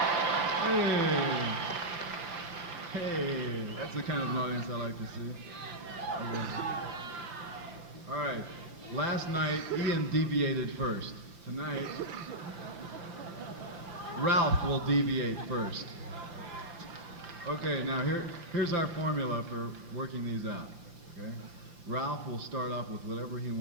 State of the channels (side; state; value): left; late; 5.8 ms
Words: Hey, that's the kind of an audience I like to see. Okay. All right, last night Ian deviated first. Tonight, Ralph will deviate first. Okay, now here's our formula for working these out. Okay, Ralph will start off with whatever he